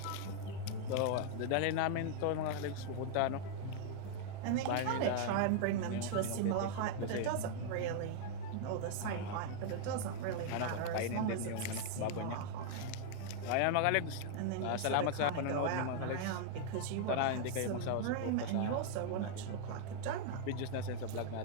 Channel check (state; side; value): different; both; correlation -0.01